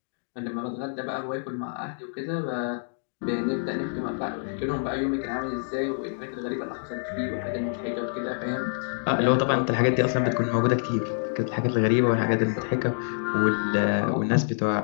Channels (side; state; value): right; silent; digital silence